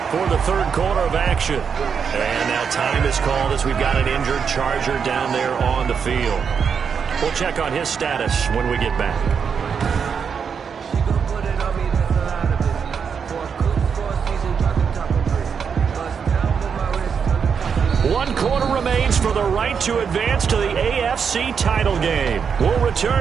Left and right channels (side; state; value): left; quieter; 6.6 dB